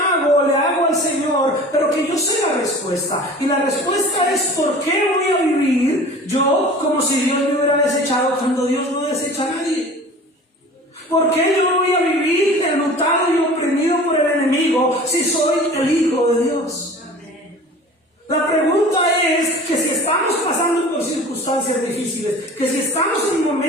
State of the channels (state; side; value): normal; both; correlation 0.41